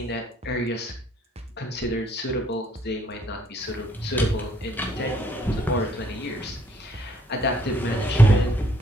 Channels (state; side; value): normal; both; correlation 0.66